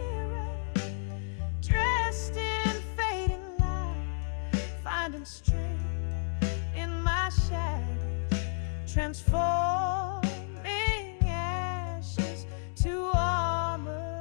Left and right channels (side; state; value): right; silent; digital silence